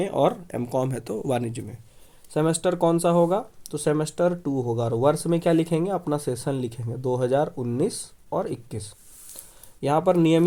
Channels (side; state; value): both; identical; correlation 1.00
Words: और एमकॉम है तो वाणिज्य में। सेमेस्टर कौन सा होगा, तो सेमेस्टर 2 होगा। और वर्ष में क्या लिखेंगे, अपना सेशन लिखेंगे 2019 और 21। यहाँ पर